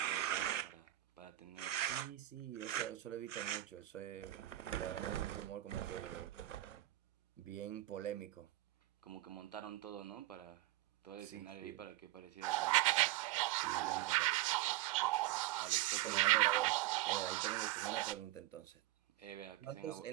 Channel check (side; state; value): left; quieter; 16.4 dB